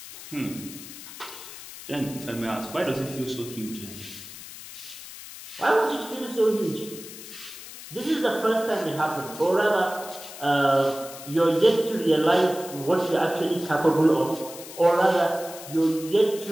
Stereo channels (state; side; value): noise; left; hiss, 14 dB below the sound